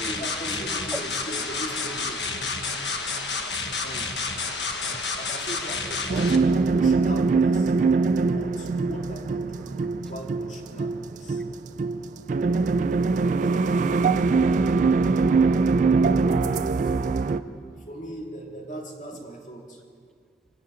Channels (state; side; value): quieter; left; 3.0 dB